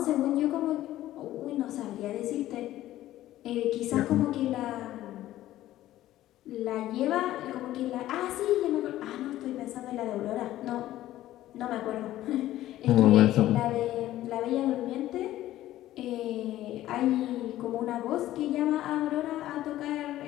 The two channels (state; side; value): quieter; right; 14.3 dB